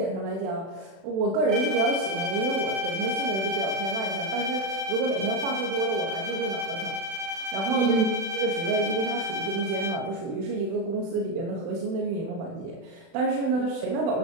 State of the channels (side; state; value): left; late; 36 ms